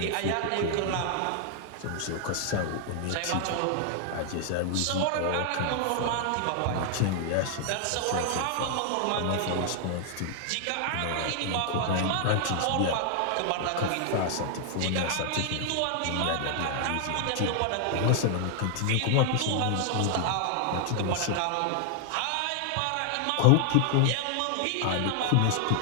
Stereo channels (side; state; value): both; different; correlation 0.00